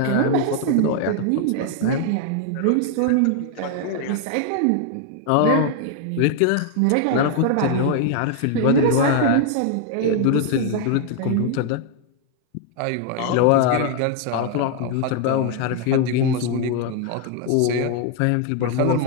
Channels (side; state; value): both; different; correlation 0.00